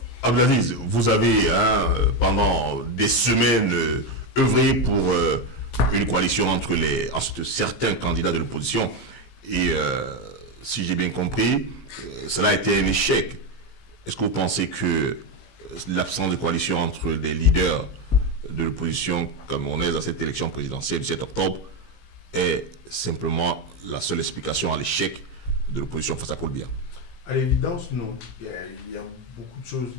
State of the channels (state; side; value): late; right; 17 ms